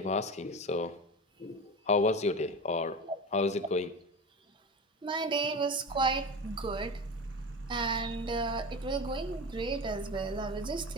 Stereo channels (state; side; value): normal; both; correlation 0.28